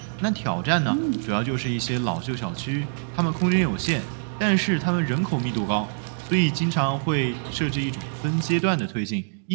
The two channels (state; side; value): silent; left; digital silence